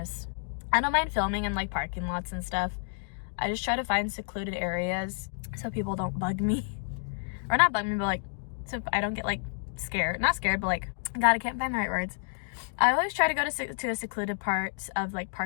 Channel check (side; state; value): right; silent; digital silence